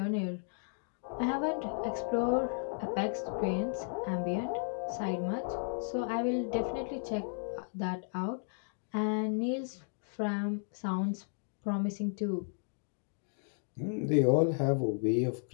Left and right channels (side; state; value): right; silent; digital silence